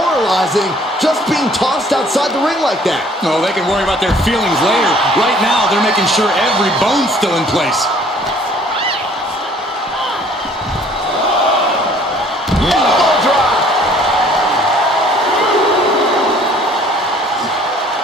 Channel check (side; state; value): both; normal; correlation 0.56